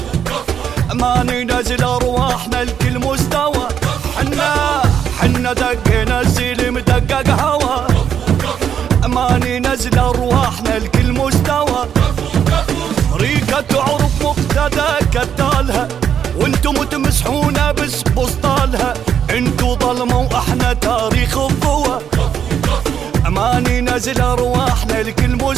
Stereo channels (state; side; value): quieter; left; 8.5 dB